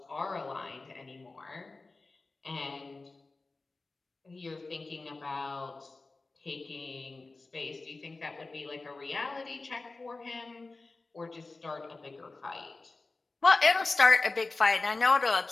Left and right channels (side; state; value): right; quieter; 3.5 dB